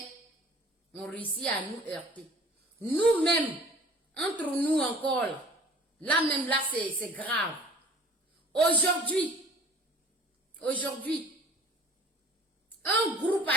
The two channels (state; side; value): normal; both; correlation 0.48